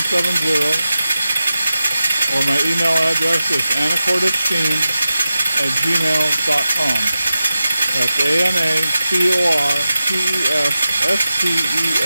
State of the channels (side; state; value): both; inverted; correlation -0.93